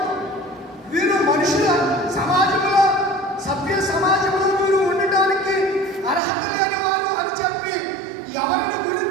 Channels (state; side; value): drops out; left; at 6.2 s